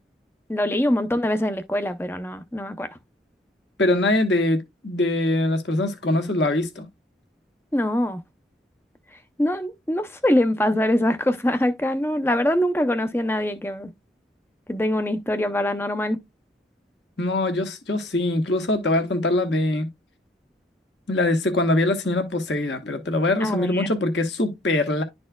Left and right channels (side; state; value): both; normal; correlation 0.67